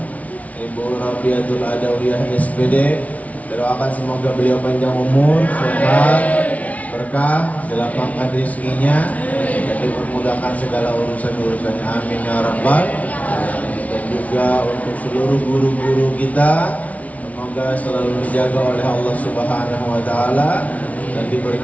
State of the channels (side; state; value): right; late; 0.069 ms